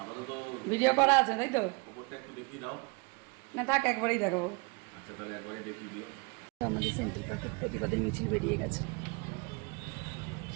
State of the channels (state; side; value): quieter; left; 30.4 dB